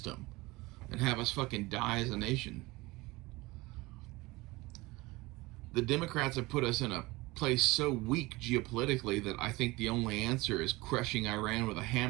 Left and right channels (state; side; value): quieter; left; 21.7 dB